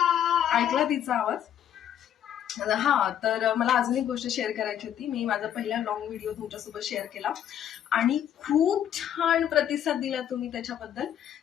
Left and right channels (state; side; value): quieter; right; 10.1 dB